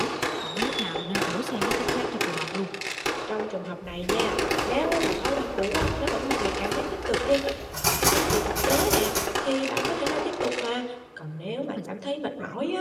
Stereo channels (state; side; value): identical; both; correlation 1.00